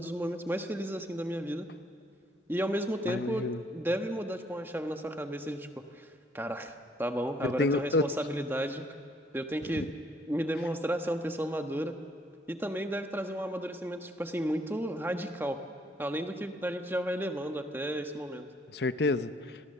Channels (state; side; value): normal; both; correlation 0.66